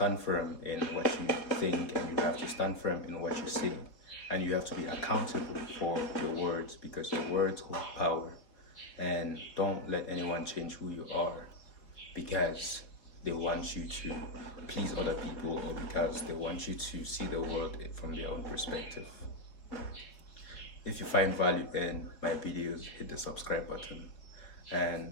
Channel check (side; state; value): right; late; 4.2 ms